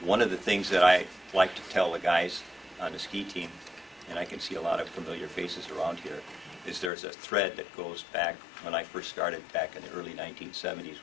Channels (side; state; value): right; drops out; at 6.9 s